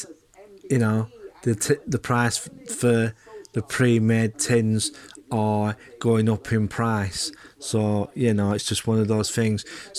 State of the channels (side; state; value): both; identical; correlation 1.00